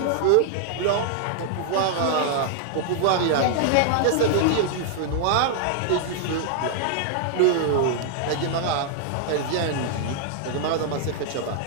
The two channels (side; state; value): both; different; correlation -0.01